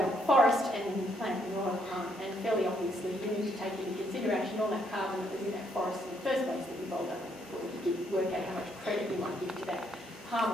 forest and then you plant manure. And fairly obviously you need to take into consideration all that carbon that was in that forest in the first place that you rolled up before you work out how much credit you might give to that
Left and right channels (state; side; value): normal; both; correlation 0.72